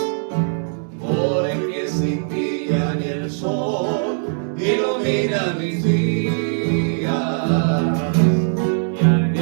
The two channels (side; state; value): left; silent; 65 dB below the other